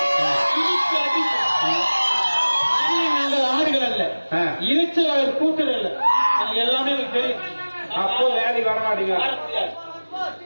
நாங்கள் ஆடுகள் அல்ல, இறைச்சலாளர் கூட்டல் அல்ல. எல்லாமே எனக்கு தெரியும். அப்போ வேலைக்கு வர மாட்டீங்க. வர முடியாது.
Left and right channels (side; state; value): both; inverted; correlation -1.00